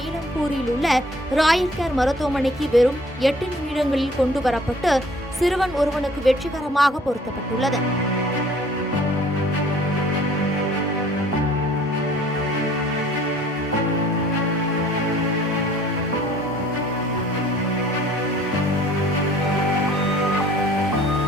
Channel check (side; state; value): both; normal; correlation 0.54